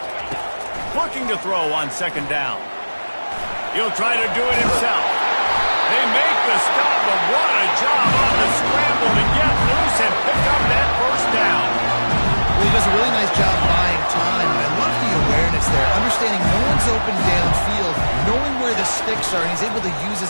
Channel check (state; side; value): inverted; both; correlation -1.00